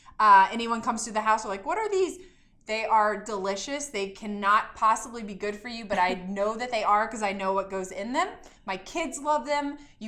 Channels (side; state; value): both; identical; correlation 1.00